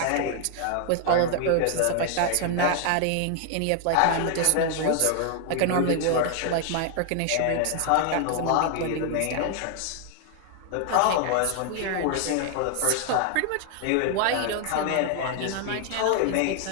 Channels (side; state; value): both; different; correlation 0.00